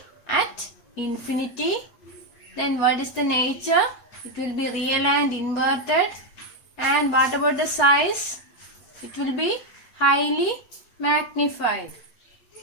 at infinity. Then what is the nature? It will be real and inverted. And what about the size? It will be highly magnified.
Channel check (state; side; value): late; right; 8.3 ms